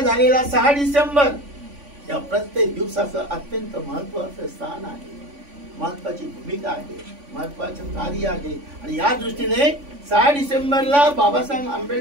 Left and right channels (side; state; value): left; late; 3.5 ms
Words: 6 डिसेंबर या प्रत्येक दिवसाचं अत्यंत महत्वाचं स्थान आहे, महत्वाची भूमिका आहे, महत्वाचं कार्य आहे। आणि या दृष्टीने 6 डिसेंबरला बाबासाहेब